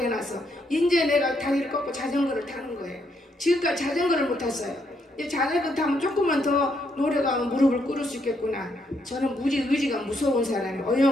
이제 내가 다리를 꺾고 자전거를 타는 거예요. 지금까지 자전거를 못 탔어요. 이제 자전거 타면 조금만 더 노력하면 무릎을 꿇을 수 있겠구나. 저는 의지가 무서운 사람이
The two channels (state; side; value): normal; both; correlation 0.75